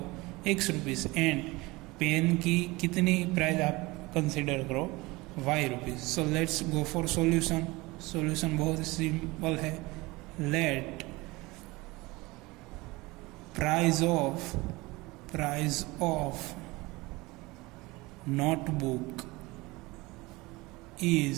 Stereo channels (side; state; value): left; quieter; 22.4 dB